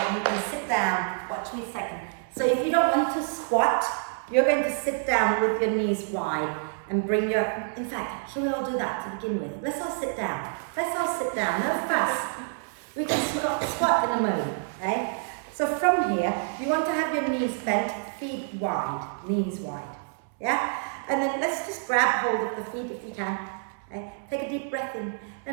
you can sit down. Watch me a second. So if you don't want to squat, you're going to sit down with your knees wide and bring your, in fact, shall we all do that to begin with? Let's all sit down. Let's all sit down, no fuss. We can squat in a moment, okay? So from here, you want to have your knees bent, feet wide, knees wide, yeah? And then let's just grab hold of the feet if you can, okay? Take a deep breath in.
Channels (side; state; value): left; silent; 60 dB below the other